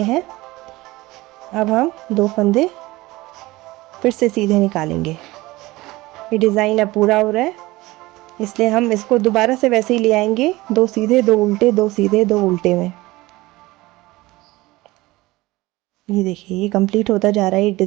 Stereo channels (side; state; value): left; quieter; 19.7 dB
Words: हैं। अब हम 2 फंदे फिर से सीधे निकालेंगे। ये डिज़ाइन अब पूरा हो रहा है, इसलिए हम इसको दोबारा से वैसे ही ले आएंगे, 2 सीधे 2 उल्टे, 2 सीधे 2 उल्टे में। ये देखिए ये कंप्लीट होता जा रहा है, ये